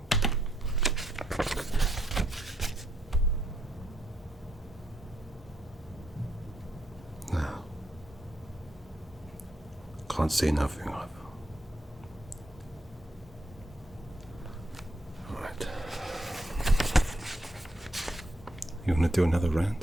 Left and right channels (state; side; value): normal; both; correlation 0.77